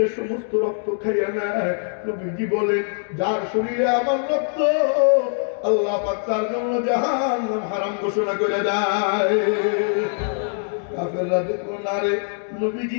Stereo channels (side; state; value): right; silent; digital silence